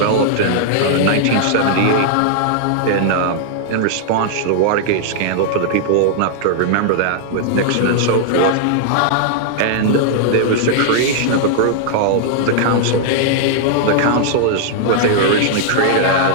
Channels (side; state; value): both; different; correlation -0.01